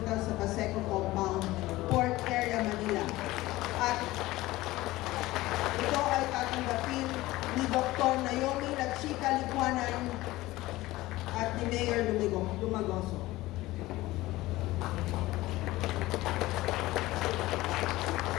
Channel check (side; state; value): right; quieter; 18.1 dB